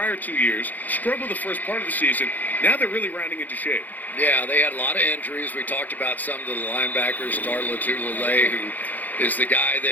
2 years, struggled the first part of the season. Now they're really rounding into shape. Yeah, they had a lot of injuries. We talked about some of the linebackers, Darla Tulele, who is the guy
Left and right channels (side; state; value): right; late; 0.082 ms